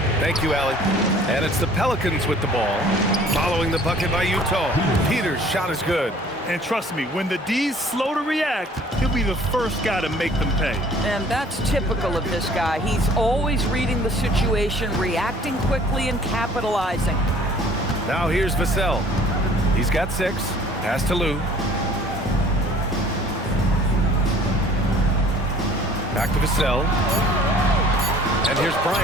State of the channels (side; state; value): both; normal; correlation 0.53